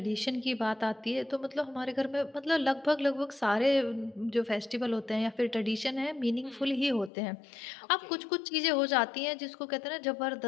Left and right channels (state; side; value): drops out; right; at 7.1 s